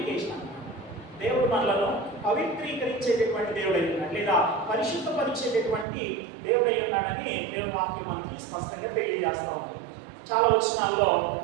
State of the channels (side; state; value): left; drops out; at 5.9 s